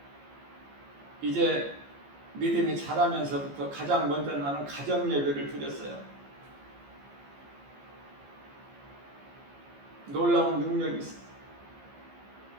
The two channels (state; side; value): late; left; 15 ms